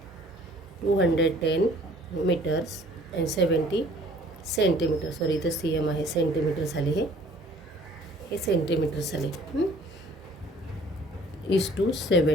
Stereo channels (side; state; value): both; normal; correlation 0.54